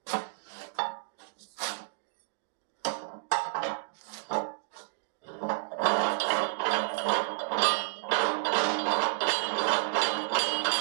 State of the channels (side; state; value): left; silent; digital silence